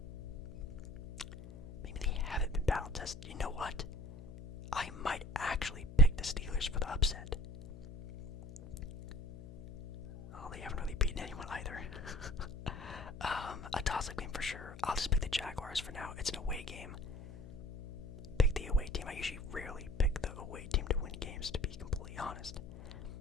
Maybe they haven't been battle-tested. You know what? I might actually pick the Steelers for the upset. Oh, they haven't really beaten anyone either. A toss-up game for sure. I'll just pick the Jaguars for now. It's an away game. Pick the away team. I usually rarely pick the away team to win games, to be completely honest.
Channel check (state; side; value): noise; left; hum, 12 dB below the sound